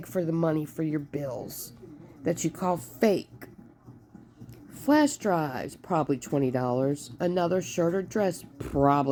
for the money for your bills that you call fake. Flash drives, probably $20. Another shirt or dress,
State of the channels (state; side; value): identical; both; correlation 1.00